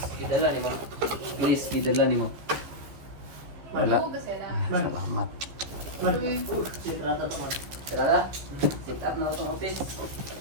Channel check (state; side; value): late; left; 15 ms